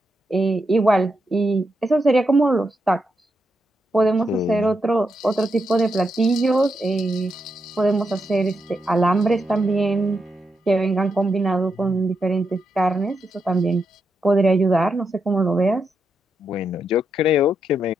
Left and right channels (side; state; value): both; normal; correlation 0.83